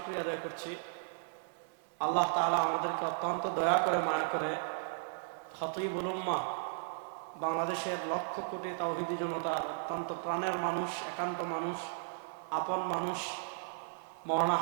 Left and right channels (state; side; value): silent; left; 54 dB below the other